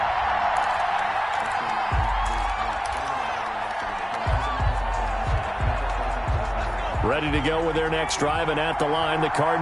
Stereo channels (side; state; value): both; identical; correlation 1.00